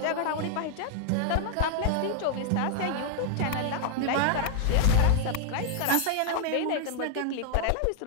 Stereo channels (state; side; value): different; both; correlation 0.00